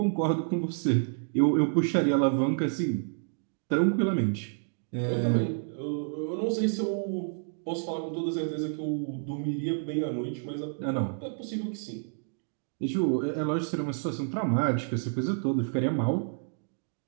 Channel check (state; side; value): silent; left; digital silence